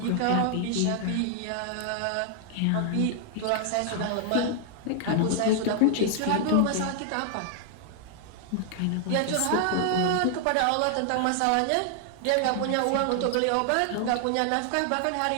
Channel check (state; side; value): different; both; correlation 0.00